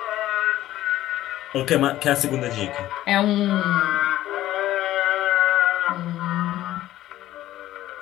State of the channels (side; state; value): right; quieter; 14.2 dB